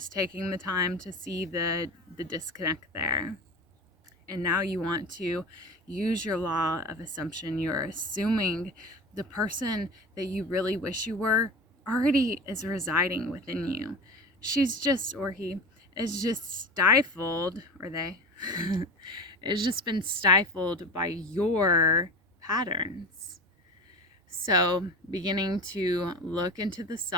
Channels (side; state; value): both; normal; correlation 0.30